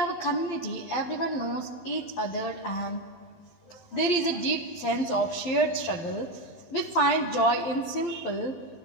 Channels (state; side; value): late; right; 12 ms